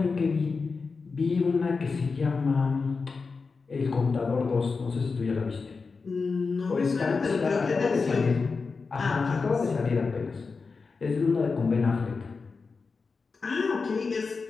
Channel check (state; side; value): quieter; right; 4.6 dB